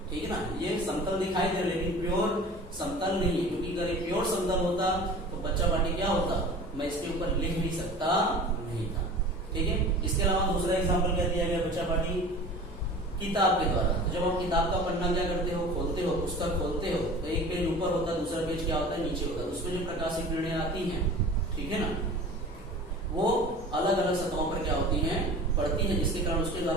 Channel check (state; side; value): normal; both; correlation 0.40